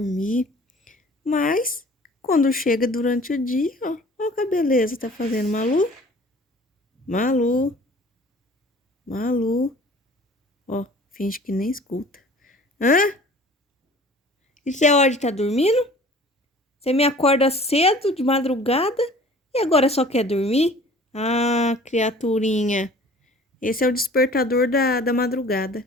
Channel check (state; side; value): normal; both; correlation 0.48